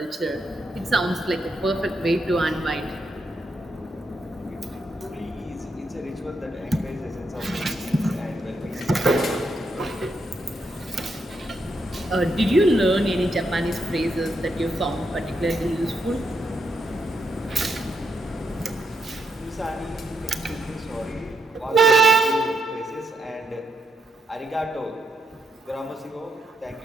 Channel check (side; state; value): both; normal; correlation 0.80